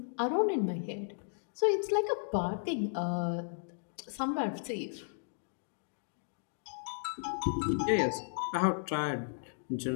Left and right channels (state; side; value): silent; right; digital silence